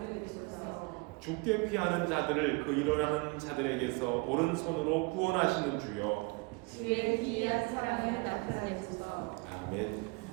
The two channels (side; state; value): left; quieter; 27.9 dB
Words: 죽게 피하는 자들을 그 일어나는 자들에게서 오른손으로 구원하시는 주여. 주의 기이한 사랑을 나타내소서. 아멘.